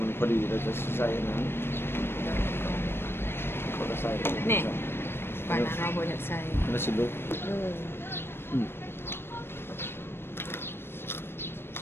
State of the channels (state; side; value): late; right; 0.11 ms